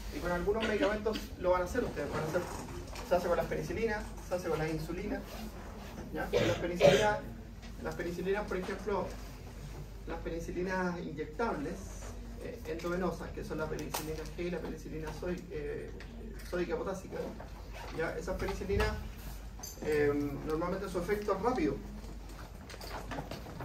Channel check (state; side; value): identical; both; correlation 1.00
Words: Y con algunos medicamentos lo van a hacer ustedes. Se hace con las penicilinas, se hace con las insulinas. ¿Ya? Con las penicilinas, por ejemplo, las penicilinas inyectables endovenosas, que son la penicilina G y la penicilina sódica potásica. ¿Ya? Esas penicilinas normalmente su efecto es rápido,